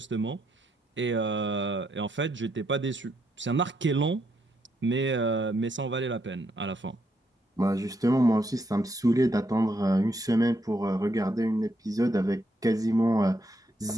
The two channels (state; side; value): normal; both; correlation 0.77